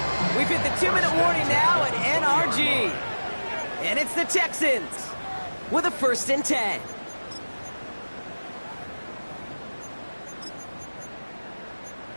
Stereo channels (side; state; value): both; inverted; correlation -1.00